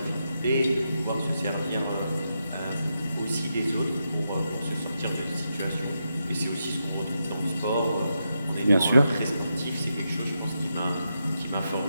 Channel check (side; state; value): both; inverted; correlation -0.85